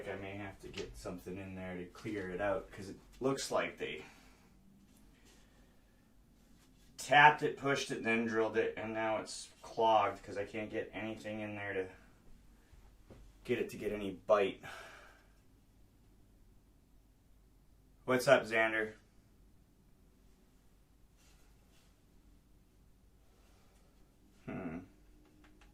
I may have to get something in there to clear it out because it looks like they tapped it, pushed it, then drilled it, and now it's clogged because I can't get anything in there to get any bite. What's up, Xander? Let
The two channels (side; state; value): both; identical; correlation 1.00